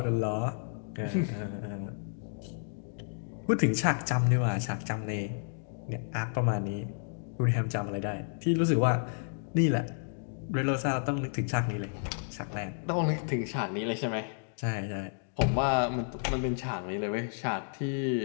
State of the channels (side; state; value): right; silent; digital silence